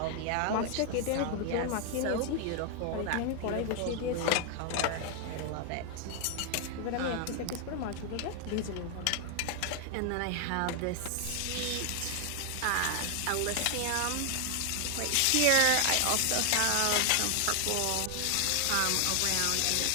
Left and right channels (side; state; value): both; different; correlation 0.00